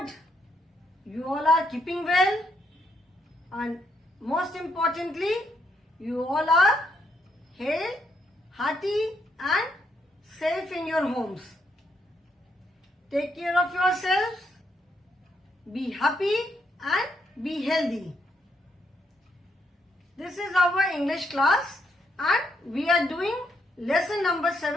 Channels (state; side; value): normal; both; correlation 0.76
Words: you all are keeping well, and most importantly, you all are hale, hearty and safe in your homes. Take care of yourselves, be happy and be healthy. This is our English class and we are doing lesson number